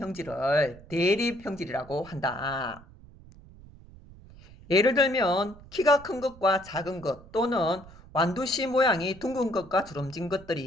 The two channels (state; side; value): noise; right; rumble, 20 dB below the sound